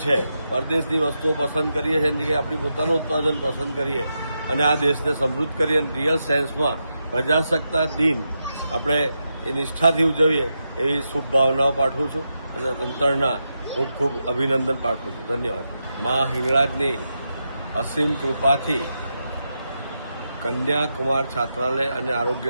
છે, પરદેશની વસ્તુઓ પસંદ કરીએ છીએ એની જગ્યાએ આપણી પોતાનું ઉત્પાદન પસંદ કરીએ અને આ દેશને સમૃદ્ધ કરીએ. રિયલ સેન્સમાં પ્રજાસત્તાક દિન આપણે એ નિષ્ઠાથી ઉજવીએ એવી શુભ ભાવનાઓ પાઠવું છું અને તંત્રના ખૂબ ખૂબ અભિનંદન પાઠવું છું. ધન્યવાદ. મા હિંગળાજની અસીમ કૃપાથી કન્યાકુમાર છાત્રાલય અને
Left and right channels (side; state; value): both; inverted; correlation -0.86